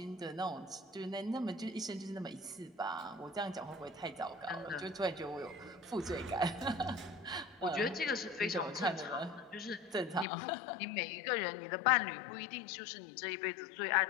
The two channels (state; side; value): drops out; right; at 10.2 s